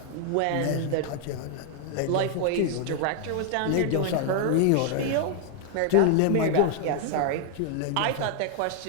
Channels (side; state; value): both; different; correlation 0.00